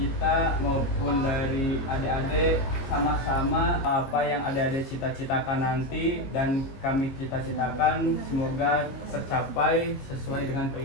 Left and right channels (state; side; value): late; right; 22 ms